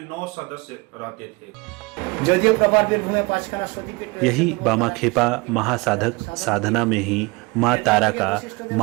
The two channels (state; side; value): quieter; left; 25.8 dB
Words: 9 सदस्य रहते थे। यही बामा खेपा महासाधक साधना में ही माँ तारा का